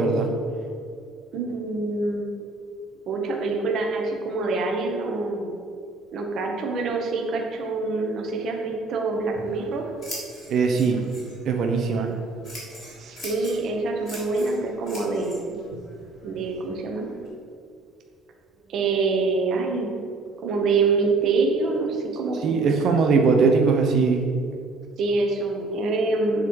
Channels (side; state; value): left; quieter; 3.6 dB